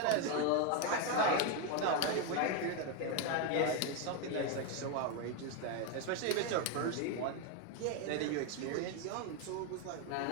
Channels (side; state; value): both; different; correlation 0.02